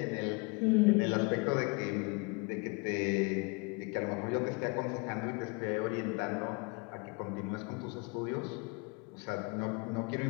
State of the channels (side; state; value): right; quieter; 29.4 dB